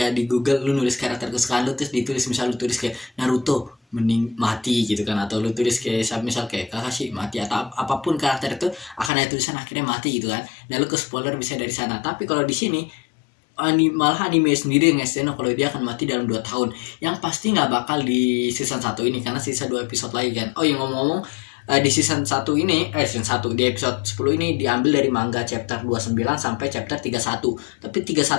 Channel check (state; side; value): drops out; right; at 9.1 s